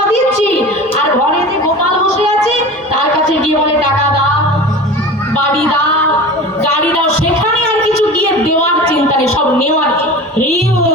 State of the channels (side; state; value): both; normal; correlation 0.35